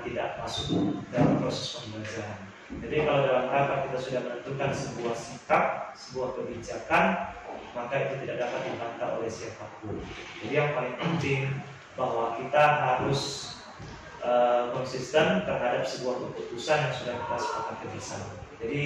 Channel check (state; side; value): identical; both; correlation 1.00